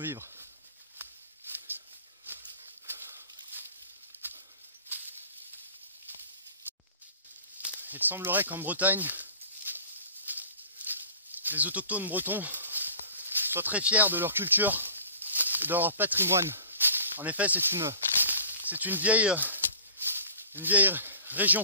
Il semblerait qu'en Bretagne, les autochtones bretons soient très fiers de leur culture et de leur patrimoine. En effet, c'est une vieille région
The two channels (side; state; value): both; inverted; correlation -0.46